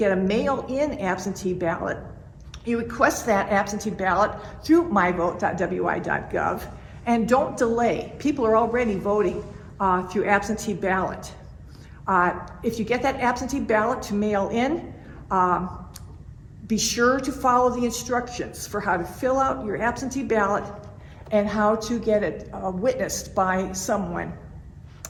a mail-in absentee ballot. You request that absentee ballot through myvote.wi.gov, and don't delay. People are already voting through absentee ballot. If you get that absentee ballot to mail in, be sure to follow the instructions for how to fill out your absentee ballot and how to get it witnessed by someone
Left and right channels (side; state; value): both; identical; correlation 1.00